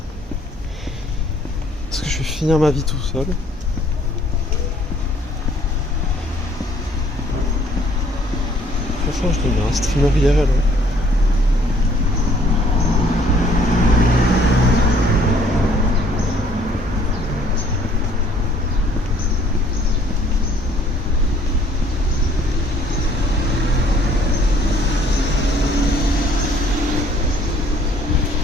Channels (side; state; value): both; normal; correlation 0.60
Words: Est-ce que je vais finir ma vie tout seul? Franchement, je deviens un streamer IRL. Hein.